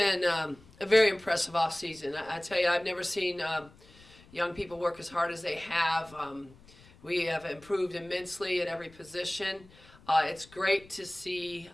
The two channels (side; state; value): left; noise; rumble, 24 dB below the sound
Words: a very impressive off season. I tell you, I've never seen young people work as hard as they have. We have improved immensely at every position. It's great to see